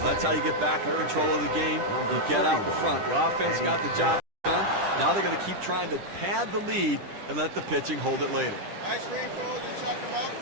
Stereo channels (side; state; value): left; late; 10 ms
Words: that's how you get back in control of the game. You get out in front. The offense got the job done. Now they're going to keep trying to pad the lead and let the pitching hold it later. Ice cream cold, you check them out.